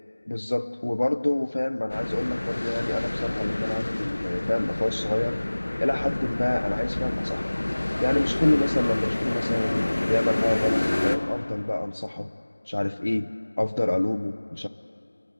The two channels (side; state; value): both; inverted; correlation -1.00